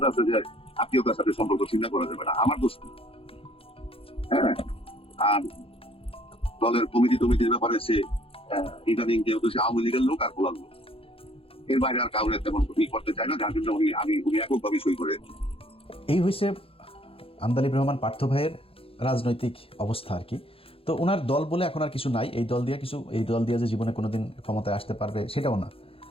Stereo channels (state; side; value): late; right; 0.27 ms